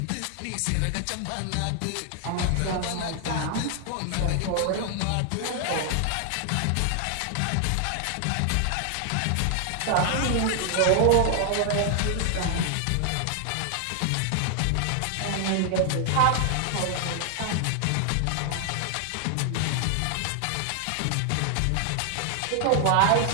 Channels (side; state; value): both; different; correlation 0.00